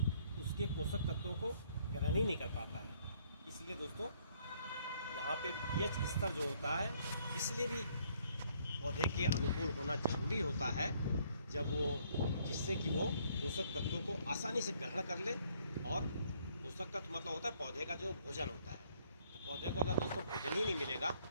उसके पोषक तत्वों को ग्रहण ही नहीं कर पाता है। इसलिए दोस्तों यहाँ पे पीएच स्तर जो होता है, इसलिए भी पौधे के अनुकूल होना जरूरी होता है, जब वो जिससे कि वो पोषक तत्वों को आसानी से ग्रहण कर ले। और पोषक तत्व मतलब होता है पौधे का जो भोजन होता है। तो पौधे को अगर दोस्तों भोजन ही नहीं मिलेगा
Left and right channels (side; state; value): both; inverted; correlation -0.66